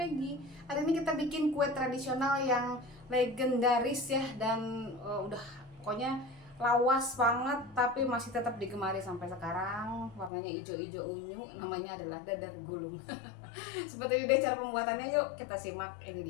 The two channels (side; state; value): right; drops out; at 10.3 s